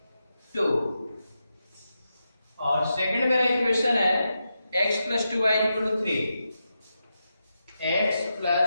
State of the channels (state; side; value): inverted; both; correlation -0.87